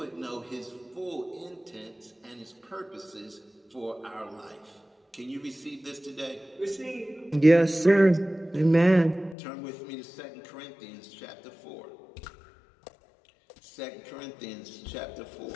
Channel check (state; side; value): drops out; right; at 9.3 s